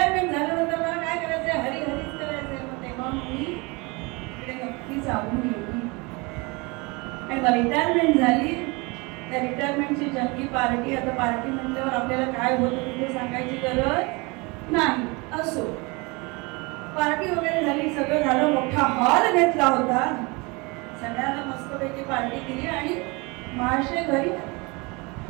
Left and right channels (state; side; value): quieter; left; 27.1 dB